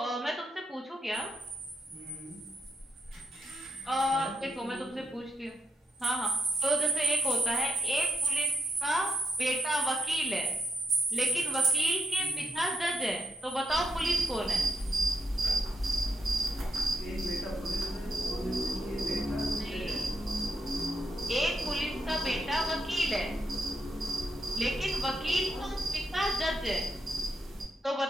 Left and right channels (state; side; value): normal; both; correlation 0.78